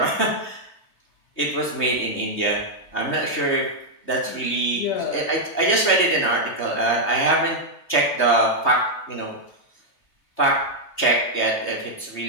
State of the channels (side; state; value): right; late; 3.2 ms